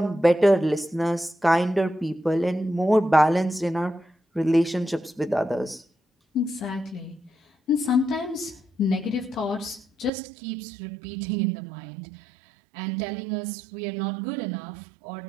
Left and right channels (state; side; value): drops out; left; at 10.1 s